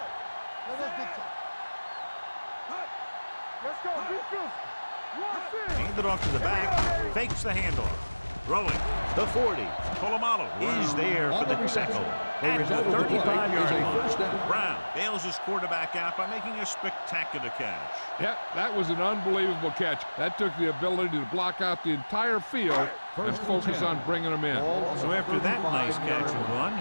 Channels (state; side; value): inverted; both; correlation -1.00